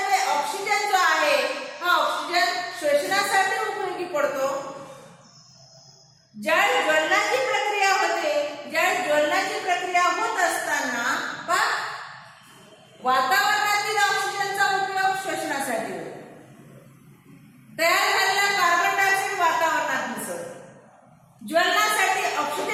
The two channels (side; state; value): both; identical; correlation 1.00